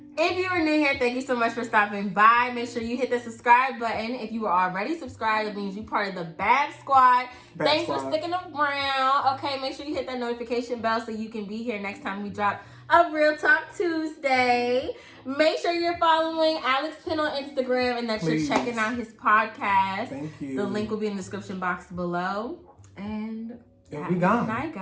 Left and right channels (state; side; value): identical; both; correlation 1.00